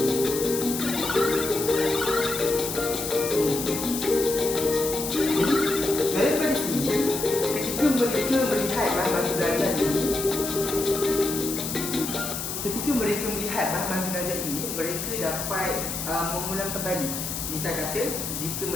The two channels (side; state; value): left; noise; hiss, 5 dB below the sound